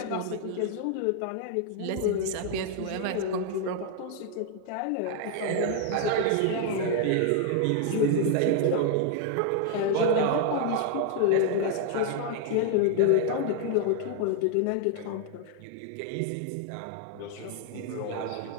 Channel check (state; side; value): different; both; correlation 0.00